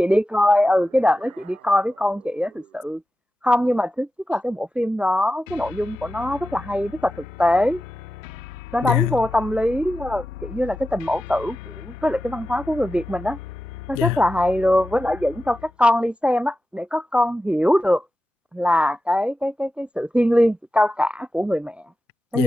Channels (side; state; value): both; normal; correlation 0.92